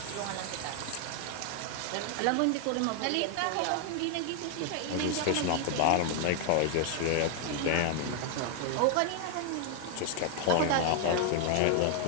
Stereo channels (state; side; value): different; both; correlation 0.00